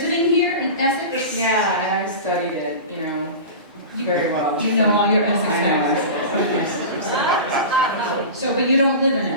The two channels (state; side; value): inverted; both; correlation -0.30